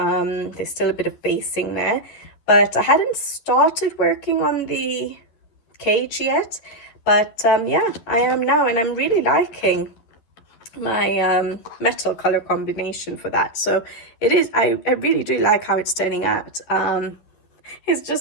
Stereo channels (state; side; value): late; right; 11 ms